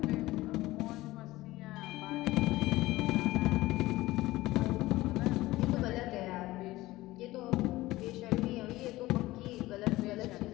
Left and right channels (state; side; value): quieter; right; 18.1 dB